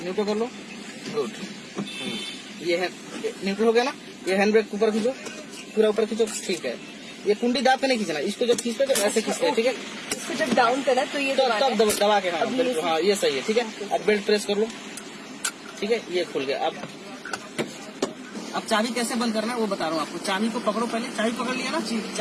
न्यूट्रल कर लो, गुड। ये है न्यूट्रल हो गया ना, ये हैंड ब्रेक ऊपर खींचो, पूरा ऊपर खींचो, ठीक है। ये कुंडी दाब के नहीं खींचना, इसको जब खींचते तो ऐसे खींचते हैं, ठीक है। इसको जब डाउन करा तो ये तब दबा के, हाँ ये सही है, ठीक है। अब बेल्ट प्रेस कर लो, ठीक है, ये खुल गया। अब चाबी कैसे बंद करना है वो बता रहा हूँ आपको। चाबी को पकड़ो, पहले चाबी पकड़ लिया ना,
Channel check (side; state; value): both; identical; correlation 1.00